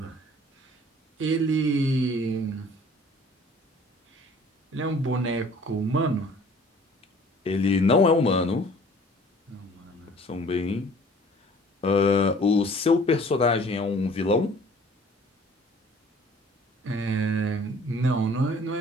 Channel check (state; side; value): normal; both; correlation 0.52